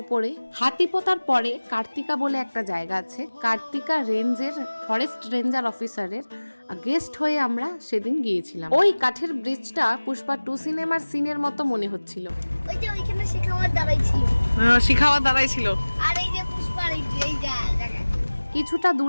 উপরে হাতিপোতার পরে কার্তিকা বলে একটা জায়গা আছে। কার্তিকা রেঞ্জের ফরেস্ট রেঞ্জার অফিসারের গেস্ট হয়ে আমরা সেদিন গিয়েছিলাম। ওই কাঠের ব্রিজটা পুষ্পা 2 সিনেমার সিনের মতো মনে হচ্ছিল। ওই যে ওইখানে শিখাওয়ার দাঁড়াইছিল। শিখাওয়ার দাঁড়াইছিল। আর এই যে পুষ্পার এই জায়গা। কিছুটা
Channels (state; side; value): inverted; both; correlation -1.00